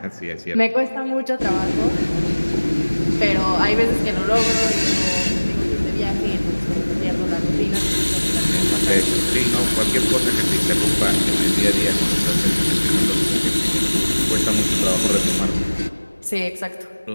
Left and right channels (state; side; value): inverted; both; correlation -1.00